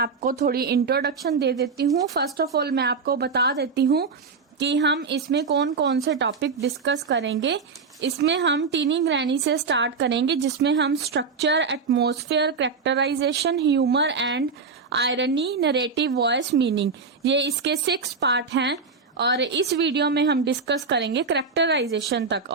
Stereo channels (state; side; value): quieter; left; 4.9 dB